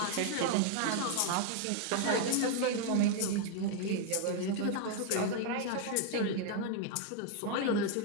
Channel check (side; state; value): both; different; correlation 0.00